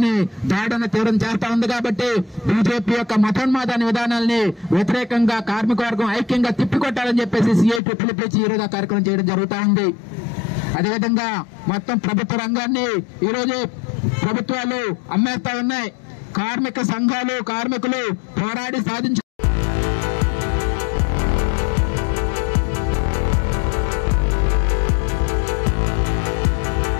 దాడును తీవ్రం చేస్తా ఉంది. కాబట్టి బీజేపీ యొక్క మతోన్మాదాన్ని విధానాల్ని వ్యతిరేకంగా కార్మిక వర్గం ఐక్యంగా తిప్పికొట్టాలని చెప్పేసి CITU పిలిపించి ఈ రోజు కార్యక్రమం చేయడం జరుగుతూ ఉంది. అదేవిధంగా మొత్తం ప్రభుత్వ రంగాన్ని ఈరోజు ప్రభుత్వాలు అమ్మేస్తా ఉన్నాయి. కార్మిక సంఘాలు కార్మికులు పోరాడి సాధించు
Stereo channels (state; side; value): drops out; right; at 7.8 s